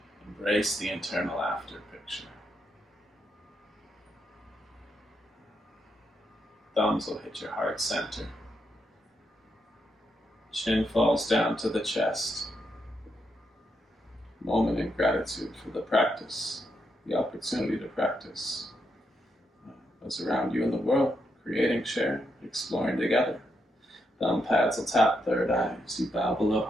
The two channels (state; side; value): normal; both; correlation 0.81